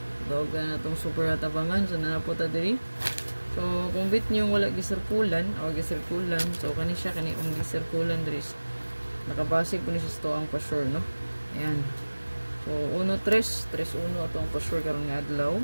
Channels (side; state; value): both; inverted; correlation -1.00